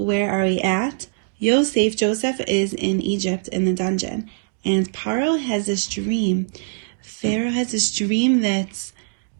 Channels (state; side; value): silent; left; digital silence